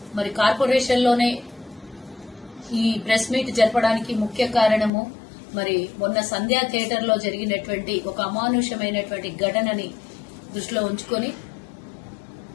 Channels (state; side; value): drops out; right; at 4.9 s